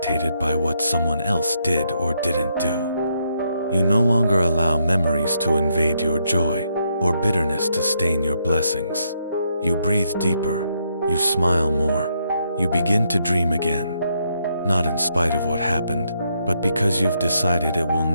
by what someone else did or didn't do. You no longer allow memories to invade your joy or bitterness to stain your blessings. You breathe deeper. You smile more. You begin to dream again. Not in spite of what happened, but because you've decided it will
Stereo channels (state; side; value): inverted; both; correlation -0.77